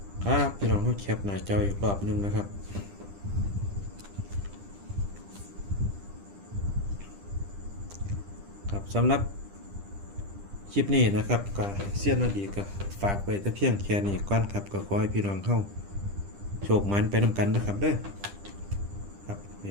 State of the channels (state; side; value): late; left; 10 ms